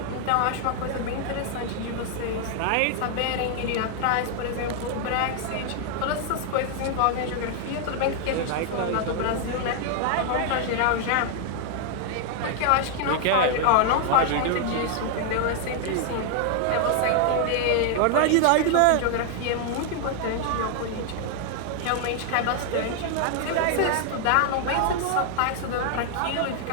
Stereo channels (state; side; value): different; both; correlation 0.00